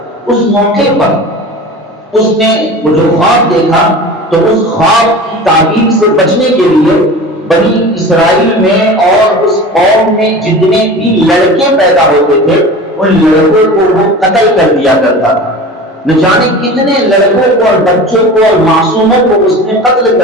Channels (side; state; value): both; normal; correlation 0.35